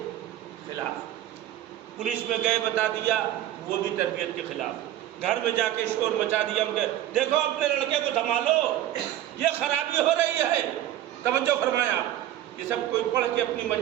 خلاف۔ پولیس میں گئے بتا دیا، وہ بھی تربیت کے خلاف۔ گھر میں جا کے شور مچا دیا، دیکھو اپنے لڑکے کو سنبھالو، یہ خرابی ہو رہی ہے۔ توجہ فرمایا، یہ سب کوئی پڑھ کے اپنی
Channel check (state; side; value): quieter; left; 12.9 dB